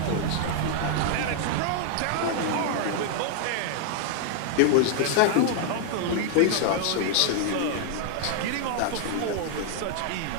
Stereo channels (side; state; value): both; different; correlation -0.01